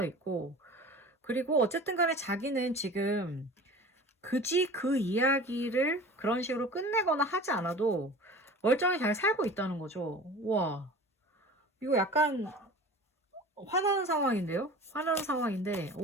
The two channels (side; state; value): both; normal; correlation 0.39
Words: 있고, 그리고 어쨌든 간에 자기는 지금 굳이 그 이야기를 그런 식으로 끝내거나 하지 않아도 멀쩡히 잘 살고 있다는 거죠. 와, 이거 약간 화나는 상황인데요? 화나는 상황인데,